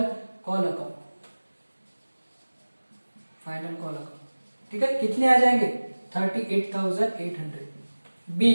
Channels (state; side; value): inverted; both; correlation -1.00